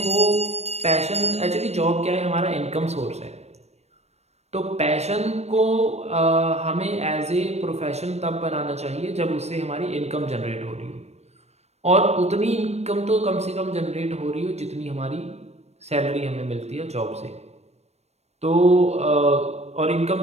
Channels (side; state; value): left; late; 0.31 ms